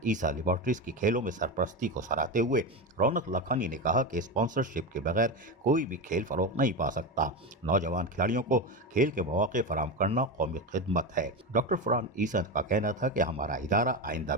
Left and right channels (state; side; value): normal; both; correlation 0.18